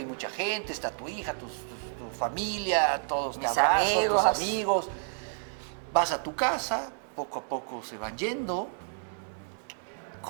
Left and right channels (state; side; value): silent; left; 58 dB below the other